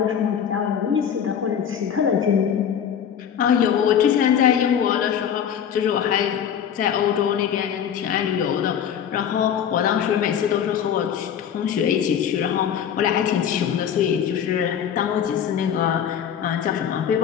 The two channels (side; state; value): right; quieter; 8.6 dB